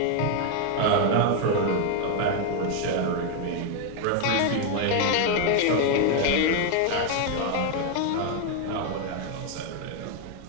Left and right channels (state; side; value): different; both; correlation 0.00